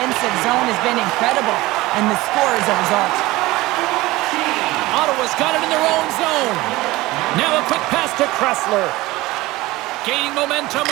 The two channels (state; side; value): quieter; left; 19.4 dB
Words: zone has been incredible, and the score is a result. Ottawa's got it in their own zone. Now a quick pass to Kressler. Gaining momentum